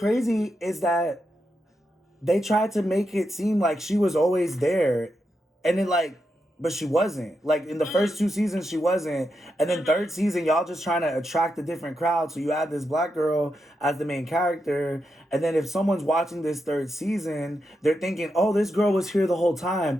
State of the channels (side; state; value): both; normal; correlation 0.85